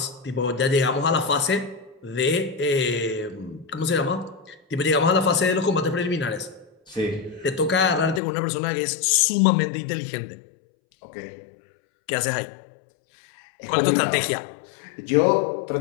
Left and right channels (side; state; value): right; drops out; at 8.2 s